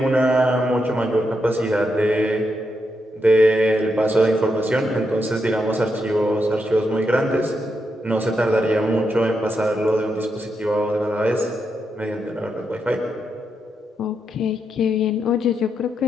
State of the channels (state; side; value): normal; both; correlation 0.83